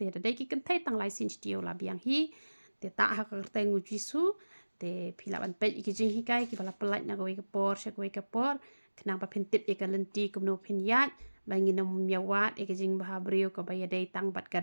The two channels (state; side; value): inverted; both; correlation -1.00